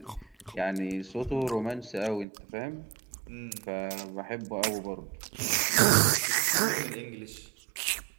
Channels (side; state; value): left; drops out; at 2.2 s